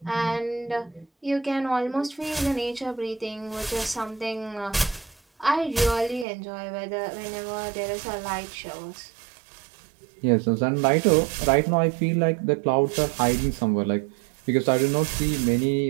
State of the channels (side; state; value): left; drops out; at 6.2 s